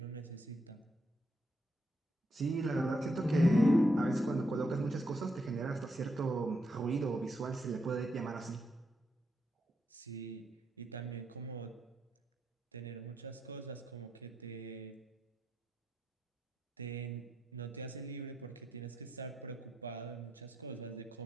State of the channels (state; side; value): normal; both; correlation 0.82